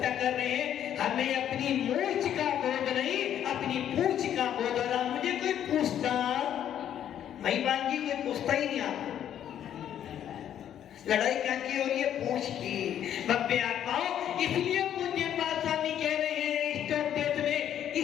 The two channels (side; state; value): right; quieter; 10.2 dB